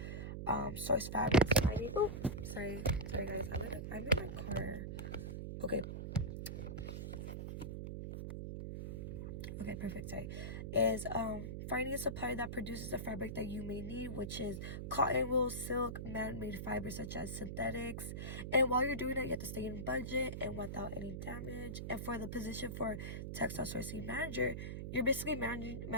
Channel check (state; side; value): noise; right; hum, 5 dB below the sound